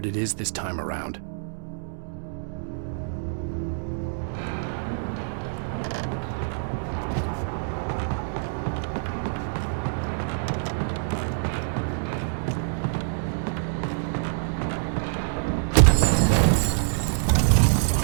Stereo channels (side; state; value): left; silent; digital silence